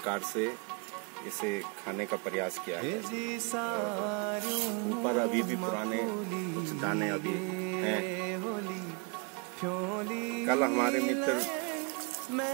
से इसे खाने का प्रयास किया है। ऊपर अभी भी पुराने कुछ दाने अभी हैं। कल हमारे मित्र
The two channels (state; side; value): quieter; left; 32.9 dB